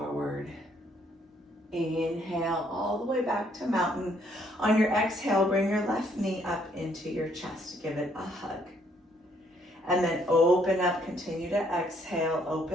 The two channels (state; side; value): normal; both; correlation 0.68